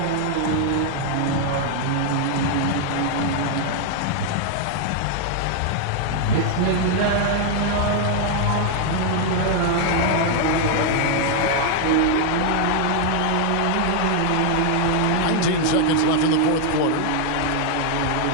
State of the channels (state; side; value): different; both; correlation 0.00